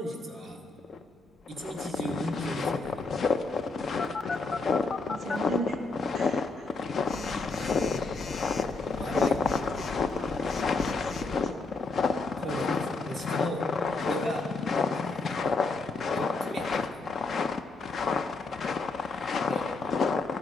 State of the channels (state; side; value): quieter; right; 3.8 dB